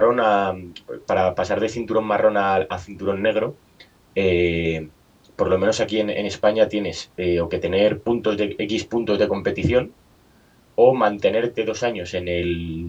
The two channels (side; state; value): both; identical; correlation 1.00